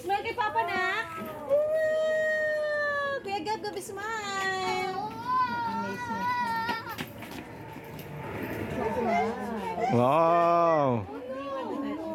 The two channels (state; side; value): identical; both; correlation 1.00